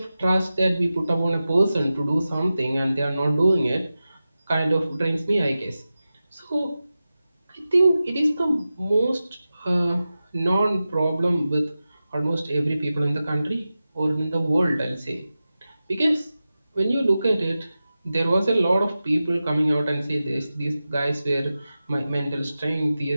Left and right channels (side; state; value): both; inverted; correlation -0.94